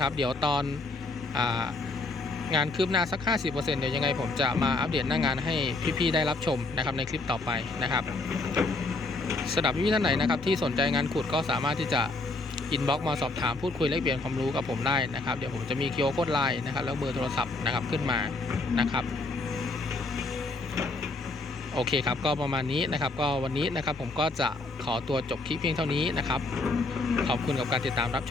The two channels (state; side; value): quieter; right; 3.2 dB